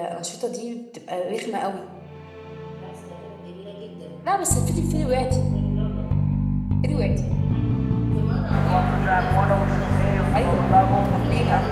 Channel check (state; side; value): identical; both; correlation 1.00